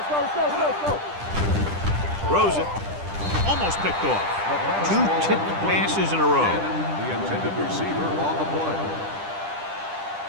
go. Throws it. Almost picked off. 2 tipped passes in a row. The intended receiver on the play.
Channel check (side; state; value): left; late; 10 ms